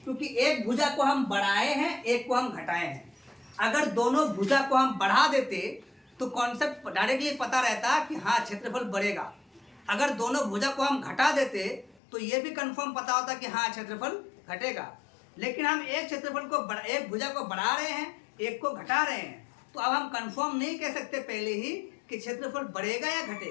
क्योंकि एक भुजा को हम बढ़ाए हैं, एक को हम घटाए हैं। अगर दोनों भुजा को हम बढ़ा देते तो कॉन्सेप्ट डायरेक्टली पता रहता कि हाँ क्षेत्रफल बढ़ेगा। अगर दोनों भुजा को हम घटा देते तो ये भी कंफर्म पता होता कि हाँ क्षेत्रफल घटेगा। लेकिन हम एक क्षेत्रफल को एक भुजा को बढ़ा रहे हैं, एक को घटा रहे हैं, तो अब हम कंफर्म नहीं कह सकते पहले ही कि क्षेत्रफल बढ़ेगा या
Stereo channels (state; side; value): drops out; right; at 12.0 s